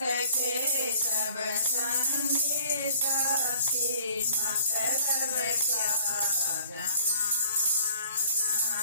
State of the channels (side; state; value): both; inverted; correlation -0.55